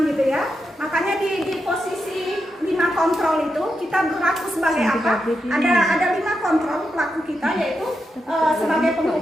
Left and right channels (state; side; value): normal; both; correlation 0.86